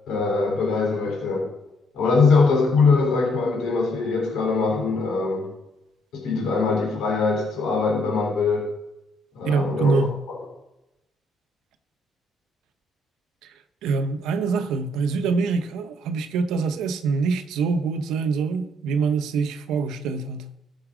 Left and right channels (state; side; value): normal; both; correlation 0.69